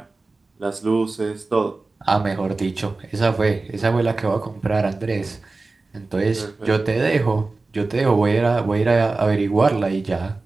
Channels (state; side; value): quieter; left; 3.5 dB